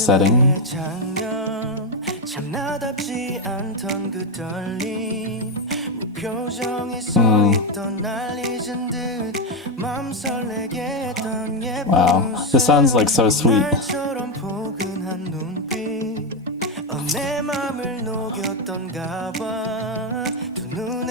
Wow, this sounds like so sweet.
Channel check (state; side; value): normal; both; correlation 0.07